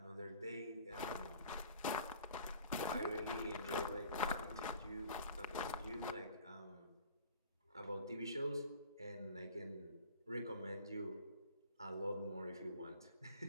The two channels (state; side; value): inverted; both; correlation -0.47